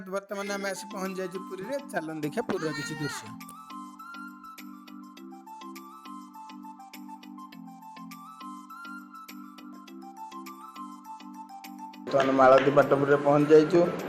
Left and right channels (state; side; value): identical; both; correlation 1.00